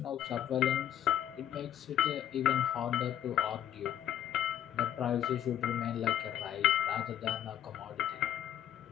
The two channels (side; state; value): right; quieter; 10.7 dB